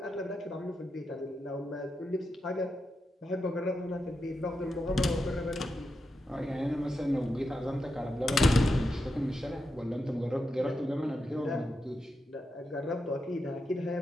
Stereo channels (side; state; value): both; normal; correlation 0.87